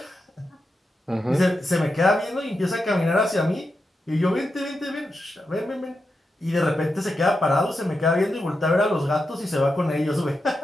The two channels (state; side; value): normal; both; correlation 0.87